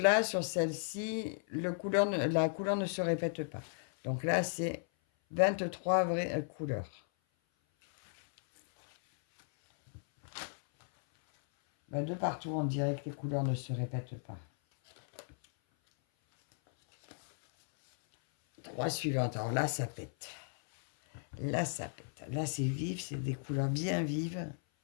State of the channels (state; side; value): silent; right; 54 dB below the other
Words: sur celle-ci, la couleur ne se répète pas. Donc là, c'est 23 vraies couleurs. Ben, de partout, on dirait que les couleurs ne se répètent pas. 3 suivantes. Alors là, ça pète. Là, ça pète. Là, c'est vif, c'est des couleurs bien vives.